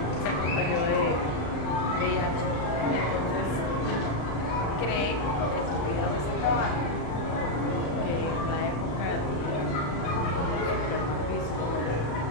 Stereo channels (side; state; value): right; late; 35 ms